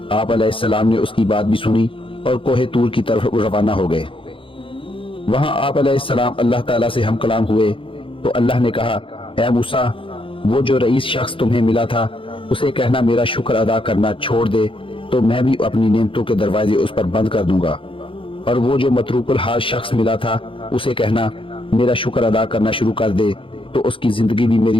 آپ علیہ السلام نے اس کی بات بھی سنی اور کوہ طور کی طرف روانہ ہو گئے. وہاں آپ علیہ السلام اللہ تعالیٰ سے ہم کلام ہوئے تو اللہ نے کہا: اے موسیٰ، وہ جو رئیس شخص تمہیں ملا تھا اسے کہنا میرا شکر ادا کرنا چھوڑ دے تو میں بھی اپنی نعمتوں کے دروازے اس پر بند کر دوں گا، اور وہ جو متروک الحال شخص ملا تھا اسے کہنا میرا شکر ادا کرنا شروع کر دے تو اس کی زندگی بھی میری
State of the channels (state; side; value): late; right; 0.25 ms